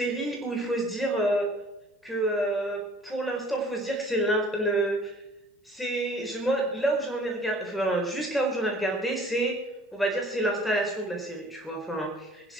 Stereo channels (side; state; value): both; normal; correlation 0.52